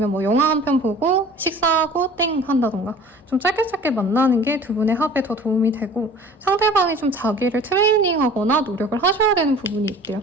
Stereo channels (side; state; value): both; normal; correlation 0.45